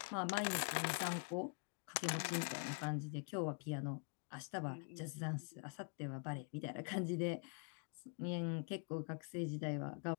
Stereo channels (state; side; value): quieter; right; 39.7 dB